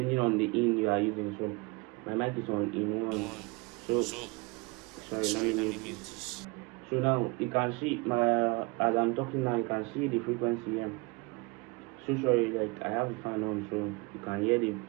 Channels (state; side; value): quieter; left; 27.6 dB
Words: on the in you are using. So my mic is on in 1. So sorry, let me mute this. So now you can see as I'm talking now, you can see the frequency here. So sorry, like I have the fan on, so you can hear the